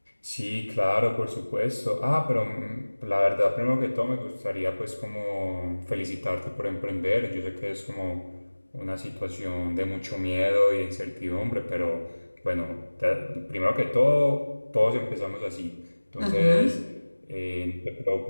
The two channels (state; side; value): inverted; both; correlation -1.00